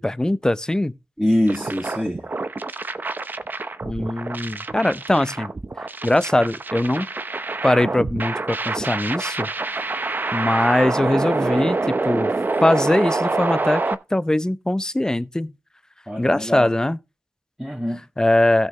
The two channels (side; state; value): both; normal; correlation 0.93